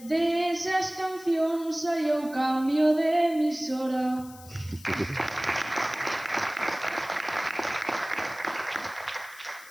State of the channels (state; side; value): noise; left; hiss, 20 dB below the sound